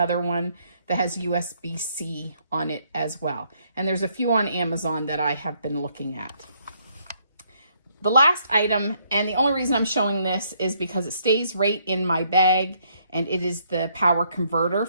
one that has USB-C on it as well. And there's a few on Amazon that I have been looking at. The last item, and the only reason I'm showing this is because it stays right in my bag, and it is the power converter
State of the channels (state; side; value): inverted; both; correlation -0.70